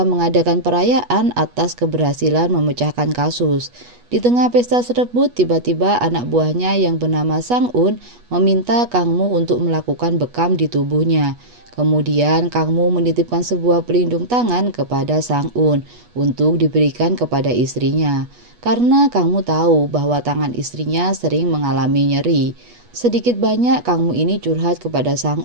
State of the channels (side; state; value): left; late; 8.3 ms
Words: mengadakan perayaan atas keberhasilan memecahkan kasus. Di tengah pesta tersebut, tiba-tiba anak buahnya yang bernama Sang-un meminta Kang Mu untuk melakukan bekam di tubuhnya. Kemudian Kang Mu menitipkan sebuah pelindung tangan kepada Sang-un untuk diberikan kepada istrinya. Karena Kang Mu tahu bahwa tangan istrinya sering mengalami nyeri. Sedikit banyak Kang Mu ini curhat kepada